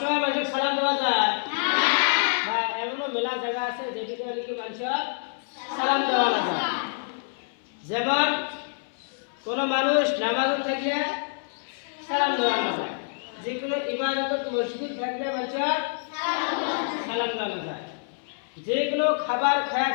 মানুষের সালাম দেওয়া যায় না, এমনও মেলা জায়গা আছে যেদিকে নাকি মানুষের সালাম দেওয়া না যায়। যেমন কোনো মানুষ নামাজে থাকলে সালাম দেওয়া না যায়, যেগুলো ইবাদত মসজিদ থাকলে মানুষের সালাম দেওয়া না যায়, যেগুলো খাবার খায়া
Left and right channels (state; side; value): silent; right; 60 dB below the other